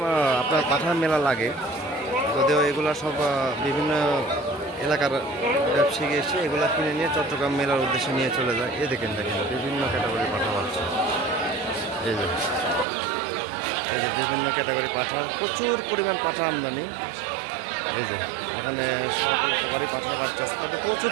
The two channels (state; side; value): drops out; left; at 12.9 s